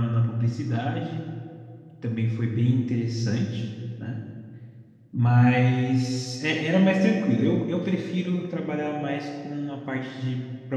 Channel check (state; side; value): identical; both; correlation 1.00